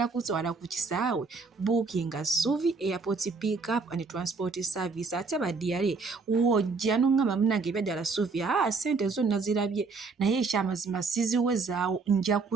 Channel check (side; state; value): left; quieter; 4.4 dB